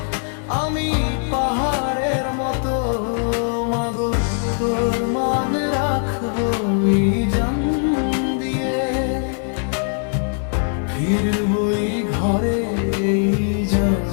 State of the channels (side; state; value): right; silent; 62 dB below the other